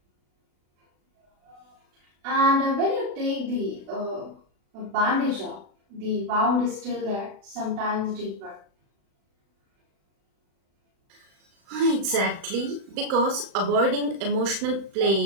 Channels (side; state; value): left; late; 36 ms